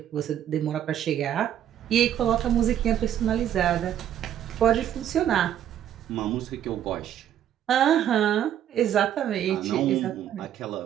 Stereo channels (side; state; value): left; quieter; 10.6 dB